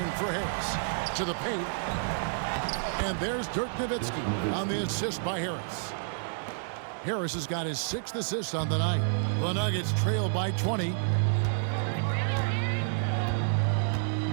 for Harris. To the paint. And there's Dirk Nowitzki on the assist by Harris. Harris has got his 6th assist on the night. The Nuggets trail by 20.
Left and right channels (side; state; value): left; silent; digital silence